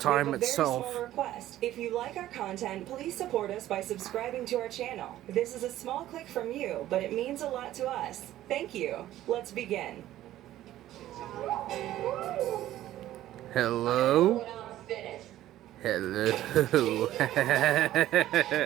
time we have a itself. very small request. If you like our content, please support us by subscribing to our channel. This is a small click from you, but it means a lot to us. Thank you. Let's begin. Hello? Hello.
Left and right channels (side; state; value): left; quieter; 13.8 dB